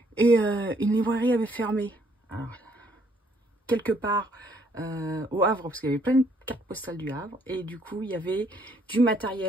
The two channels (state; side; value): normal; both; correlation 0.67